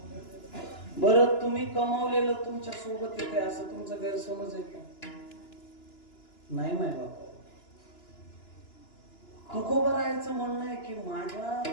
बरं, तुम्ही कमावलेलं तुमच्या सोबत येते असं तुमचं गैरसमज आहे का? नाही माय बाबा. तुकोबारायांचं म्हणणं आहे की माझ्या,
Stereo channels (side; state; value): right; late; 2.9 ms